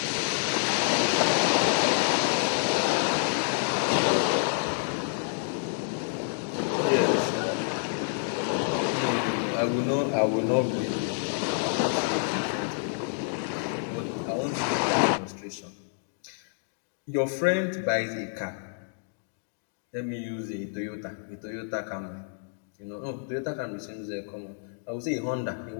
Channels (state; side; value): silent; right; digital silence